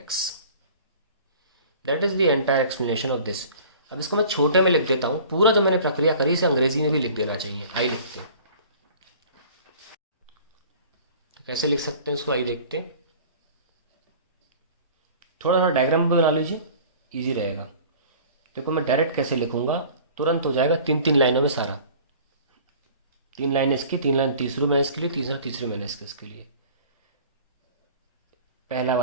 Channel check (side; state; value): both; inverted; correlation -0.45